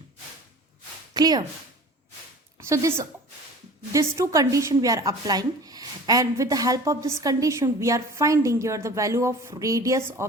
Clear? So this two condition we are applying, and with the help of this condition we are finding here the value of radius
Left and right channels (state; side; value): normal; both; correlation 0.42